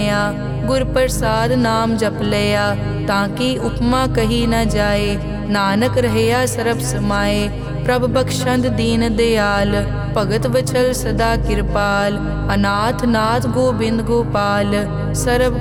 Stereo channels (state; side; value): identical; both; correlation 1.00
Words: गुर प्रसाद नाम जप लिया। ताकि उपमा कही न जाए, नानक रहया सरब समाए। प्रभ बख्शंद दीन दयाल, भगत वचल सदा कृपाल। अनाथ नाथ गोबिंद गोपाल,